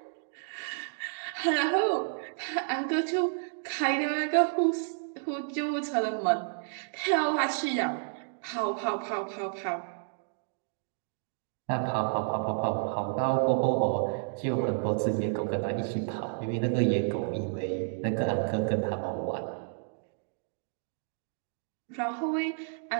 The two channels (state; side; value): silent; left; digital silence